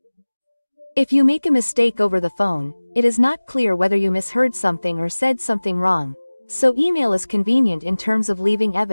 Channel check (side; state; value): both; inverted; correlation -1.00